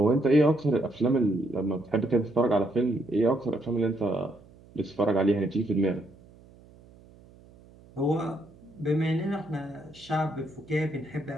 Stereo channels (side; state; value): right; noise; hum, 24 dB below the sound